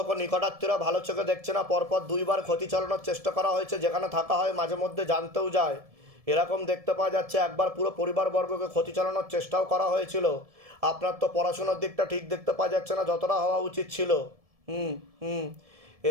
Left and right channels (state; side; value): late; left; 1.7 ms